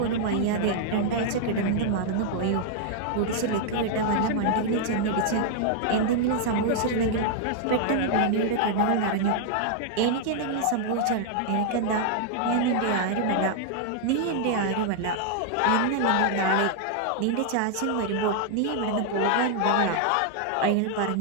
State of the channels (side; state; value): both; different; correlation -0.01